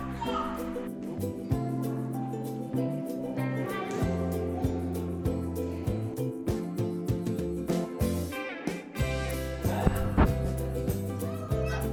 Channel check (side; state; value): both; identical; correlation 1.00